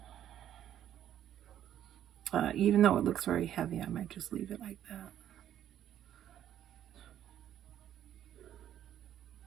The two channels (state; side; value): quieter; left; 10.9 dB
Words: Even though it looks very heavy, I might just leave it like that.